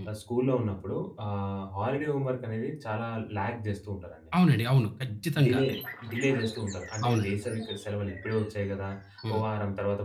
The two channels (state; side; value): identical; both; correlation 1.00